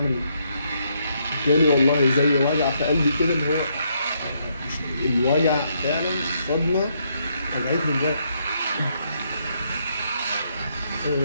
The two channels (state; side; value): inverted; both; correlation -0.74